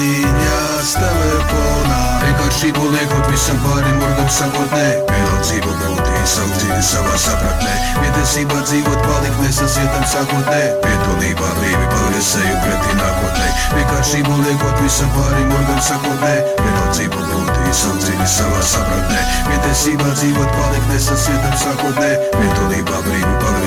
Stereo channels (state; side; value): identical; both; correlation 1.00